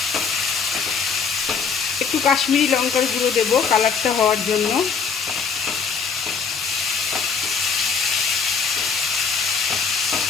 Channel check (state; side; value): quieter; right; 5.9 dB